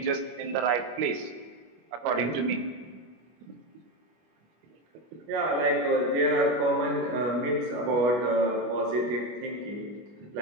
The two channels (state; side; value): late; left; 25 ms